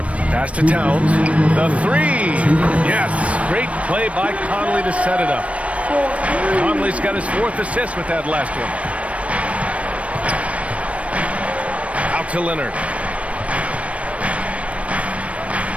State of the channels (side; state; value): left; late; 0.064 ms